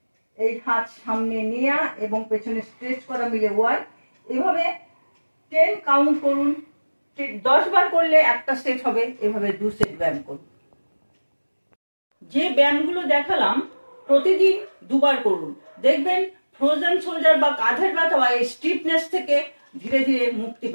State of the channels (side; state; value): both; inverted; correlation -1.00